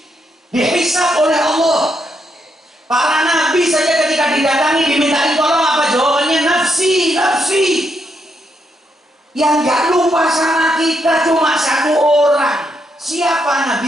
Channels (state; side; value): normal; both; correlation 0.79